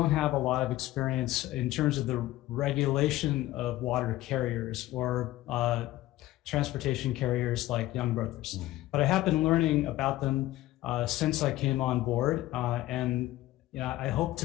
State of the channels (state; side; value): quieter; right; 16.0 dB